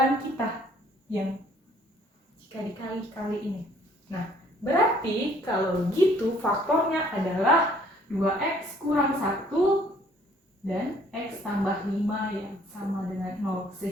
kita yang jika dikali-kali ini. Nah, berarti kalau gitu faktornya adalah 2x kurang 1 dan x tambah 5 yang sama dengan 0.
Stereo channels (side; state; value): both; normal; correlation 0.60